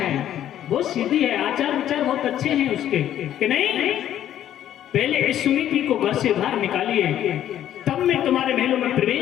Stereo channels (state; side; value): quieter; right; 11.3 dB